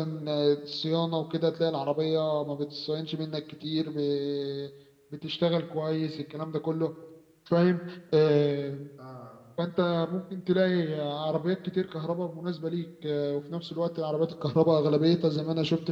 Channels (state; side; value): identical; both; correlation 1.00